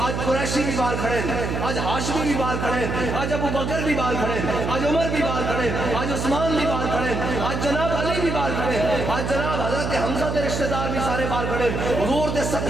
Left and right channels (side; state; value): right; noise; hum, 2 dB below the sound